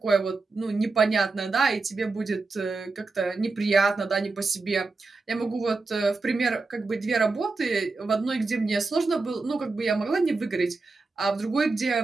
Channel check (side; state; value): left; quieter; 3.8 dB